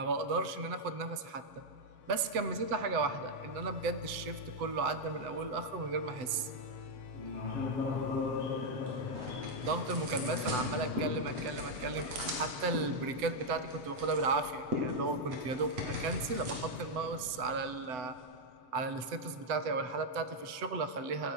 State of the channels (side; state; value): left; late; 7.9 ms